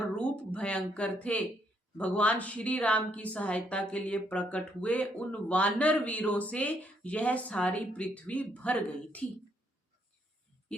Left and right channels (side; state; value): both; normal; correlation 0.72